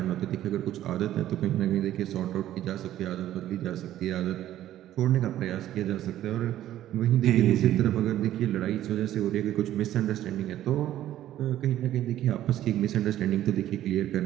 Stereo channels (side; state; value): left; quieter; 12.9 dB